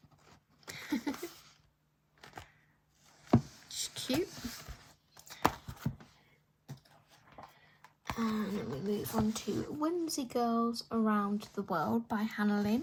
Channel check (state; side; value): identical; both; correlation 1.00